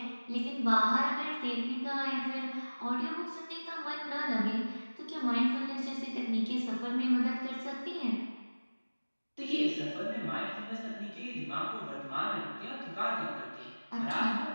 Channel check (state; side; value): inverted; both; correlation -1.00